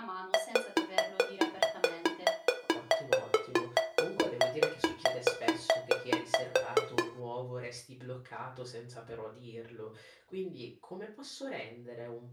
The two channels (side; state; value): both; identical; correlation 1.00